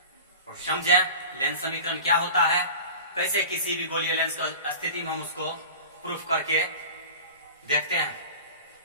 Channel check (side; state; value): both; inverted; correlation -0.37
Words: और समझें लेंस समीकरण क्या होता है, कैसे किसी भी गोलीय लेंस की स्थिति में हम उसको प्रूफ करके देखते हैं।